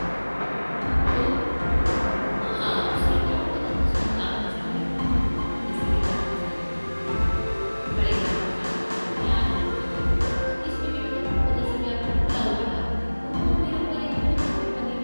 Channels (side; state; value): both; inverted; correlation -1.00